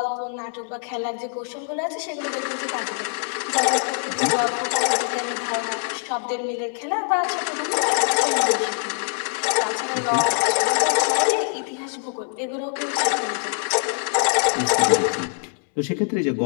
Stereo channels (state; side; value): silent; right; digital silence